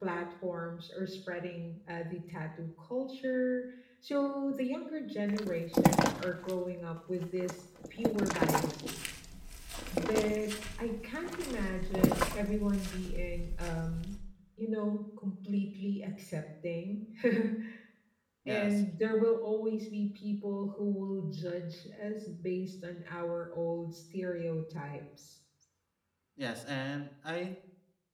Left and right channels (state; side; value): identical; both; correlation 1.00